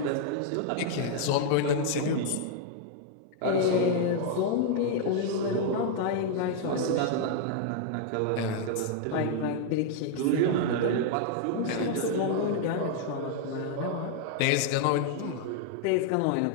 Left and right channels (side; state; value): both; different; correlation 0.00